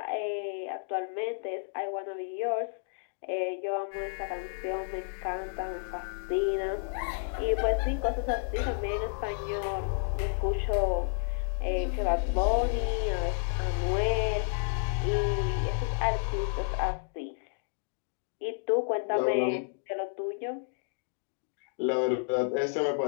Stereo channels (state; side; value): silent; right; digital silence